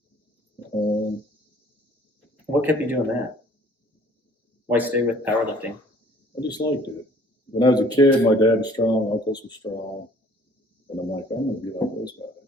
What kept you doing that? Why stay with powerlifting? I just liked it. When I was a kid, my dad was strong, uncles were strong, and I'm like, I'm going to be like those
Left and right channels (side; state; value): both; normal; correlation 0.55